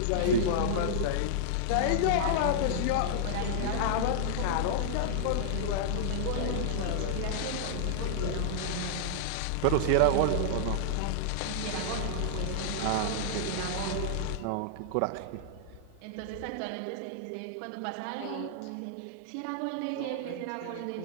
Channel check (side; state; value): both; different; correlation -0.01